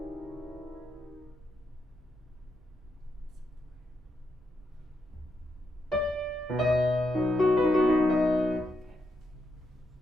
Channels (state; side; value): normal; both; correlation 0.82